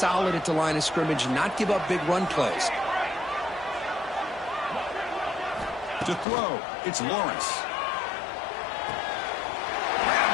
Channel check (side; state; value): right; drops out; at 6.2 s